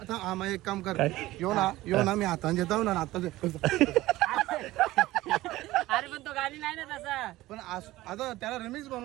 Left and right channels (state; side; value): quieter; left; 17.2 dB